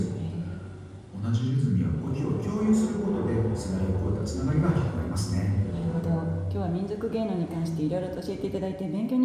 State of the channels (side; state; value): both; identical; correlation 1.00